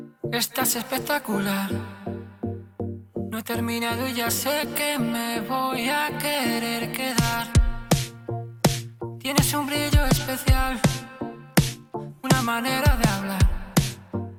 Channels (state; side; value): identical; both; correlation 1.00